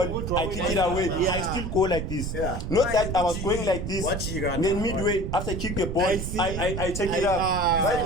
I kick it away, I still go like this. Not that I was going like this, then midway after I kick the ball, I take it up.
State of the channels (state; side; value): noise; right; rumble, 4 dB below the sound